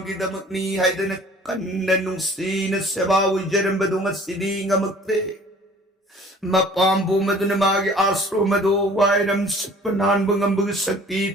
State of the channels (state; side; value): normal; both; correlation 0.50